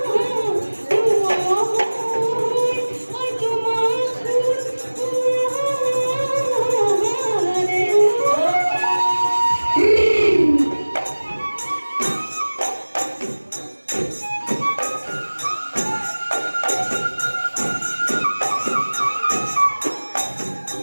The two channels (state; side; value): inverted; both; correlation -1.00